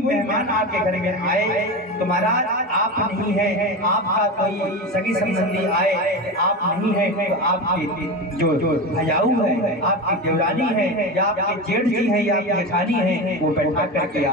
मेहमान आपके घर में आए तो महाराज आप नहीं है, आपका कोई सगी संबंधी आए, आप नहीं है तो आपके जो भैयाऊ है, आपकी देवरानी है, या आपके जेठ जी है, या आपकी जेठानी है, वो बैठा करके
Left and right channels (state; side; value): normal; both; correlation 0.23